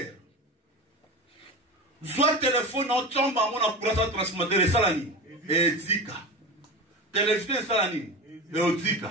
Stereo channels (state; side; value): normal; both; correlation 0.28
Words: Soit téléphone en tombe à mon appareil transformateur et salani et zika. Télévision et salani et